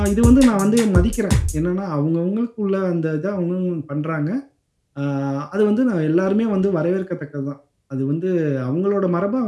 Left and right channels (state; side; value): identical; both; correlation 1.00